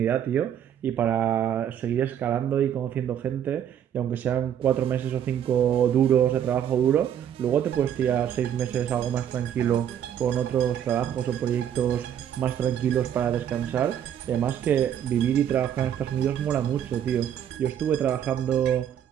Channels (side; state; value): left; quieter; 9.6 dB